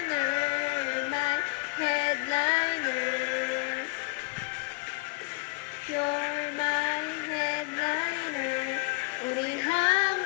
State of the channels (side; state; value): right; quieter; 28.7 dB